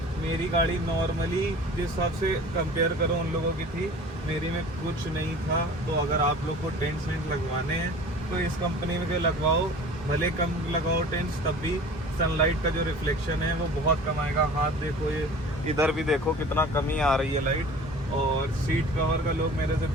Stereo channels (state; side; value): normal; both; correlation 0.43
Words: मेरी गाड़ी नॉर्मली जिस हिसाब से कंपेयर करो उन लोगों की थी, मेरी में कुछ नहीं था। तो अगर आप लोग को टेंट सेंट लगवाने हैं तो इस कंपनी में के लगवाओ, भले कम लगाओ टेंट्स, तब भी सनलाइट का जो रिफ्लेक्शन है वो बहुत कम आएगा। हाथ देखो, ये इधर भी देखो कितना कमी आ रही है लाइट। और सीट कवर का लोग मेरे से